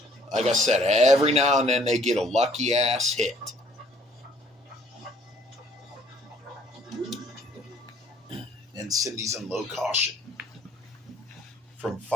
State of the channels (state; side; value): normal; both; correlation 0.59